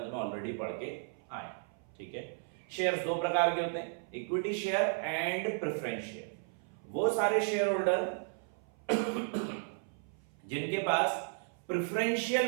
में ऑलरेडी पढ़ के आए। ठीक है, शेयर्स 2 प्रकार के होते हैं, equity share and preference share. वो सारे शेयर होल्डर जिनके पास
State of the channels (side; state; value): left; silent; 55 dB below the other